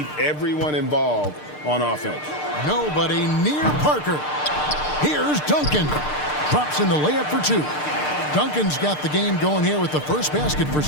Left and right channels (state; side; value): late; right; 6.6 ms